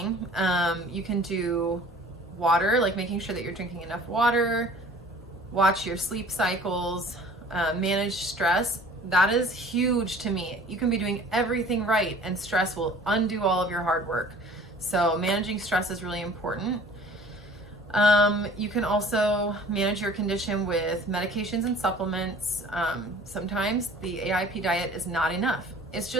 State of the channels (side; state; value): both; normal; correlation 0.48